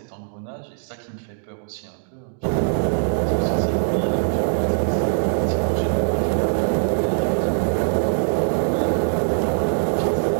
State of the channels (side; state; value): left; silent; 64 dB below the other